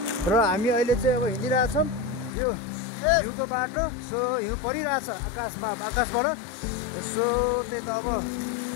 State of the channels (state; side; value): drops out; right; at 2.3 s